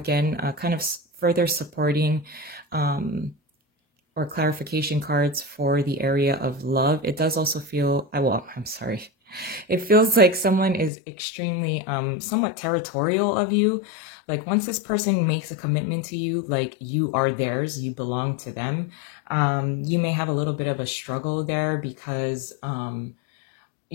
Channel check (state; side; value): drops out; right; at 10.9 s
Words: kind of further supporting or clarification cards for the area of love. It does also feel, I'm sorry. It feels like someone is extremely, somewhat territorial of you. Like once this person makes a commitment to you, like you are theirs, you belong to them. You may have a little bit of a struggle there because,